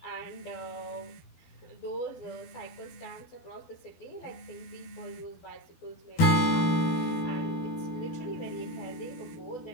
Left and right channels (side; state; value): right; late; 13 ms